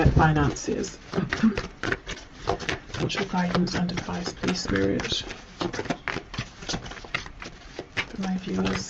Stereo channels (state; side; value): identical; both; correlation 1.00